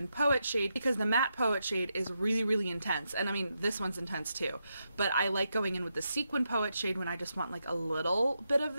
poet shade, because the matte poet shade is really, really intense. And I mean, this one's intense too. But I like going in with the sequin poet shade when I just want like a little bit of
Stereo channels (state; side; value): inverted; both; correlation -0.84